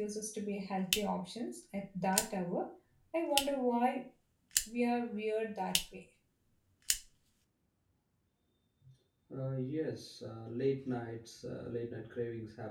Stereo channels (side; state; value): both; identical; correlation 1.00